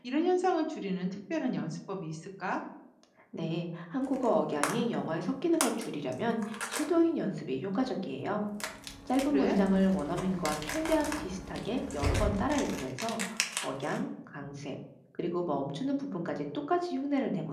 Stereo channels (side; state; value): both; identical; correlation 1.00